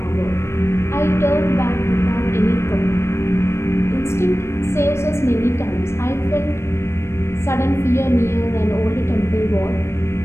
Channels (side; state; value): right; late; 0.13 ms